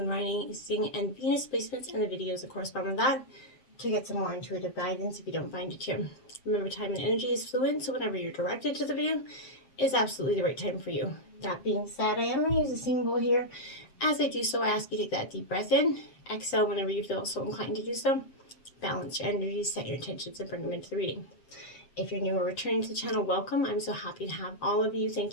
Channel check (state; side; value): late; right; 7.7 ms